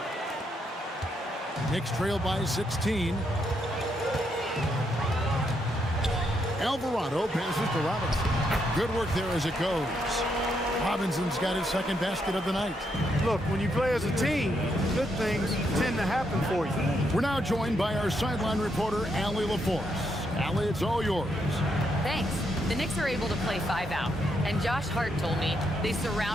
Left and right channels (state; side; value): normal; both; correlation 0.78